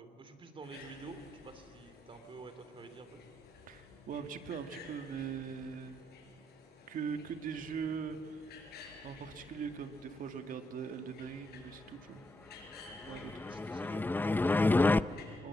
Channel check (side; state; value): both; normal; correlation 0.81